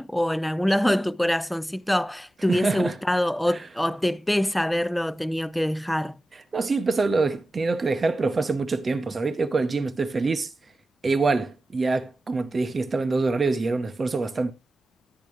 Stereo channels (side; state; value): both; normal; correlation 0.94